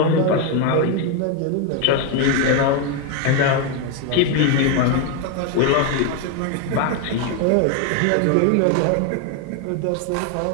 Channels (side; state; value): both; different; correlation 0.01